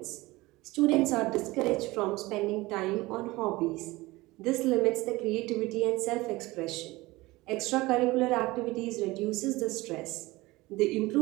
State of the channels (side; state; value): left; quieter; 20.5 dB